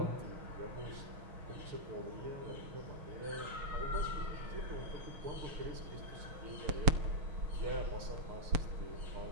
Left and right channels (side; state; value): left; late; 6.5 ms